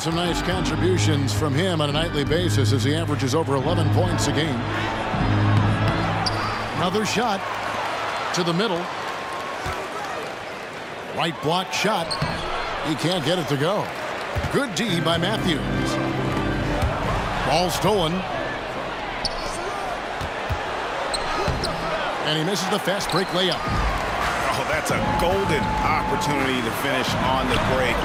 some nice contributions from him on a nightly basis as he averages over 11 points a game. Another shot to the middle. Right block shot. He can't get it to go. Good D by Matthews. Ball stolen. And he misses the fast break layup. Oh, that's a golden opportunity to finish on the break,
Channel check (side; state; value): both; identical; correlation 1.00